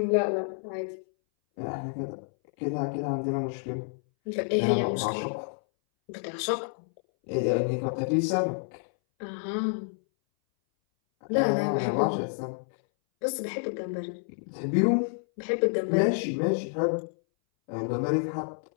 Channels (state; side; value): silent; right; 59 dB below the other